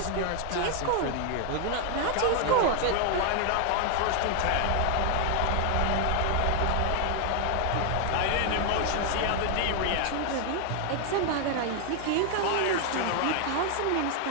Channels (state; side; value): different; both; correlation 0.00